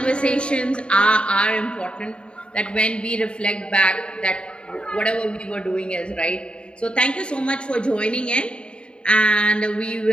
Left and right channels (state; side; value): late; right; 0.054 ms